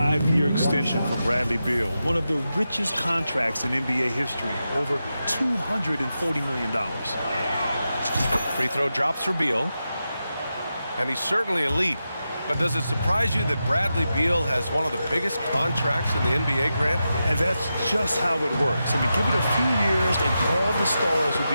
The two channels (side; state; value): both; inverted; correlation -0.89